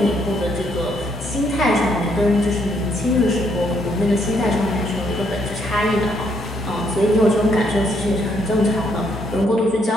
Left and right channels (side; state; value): both; normal; correlation 0.72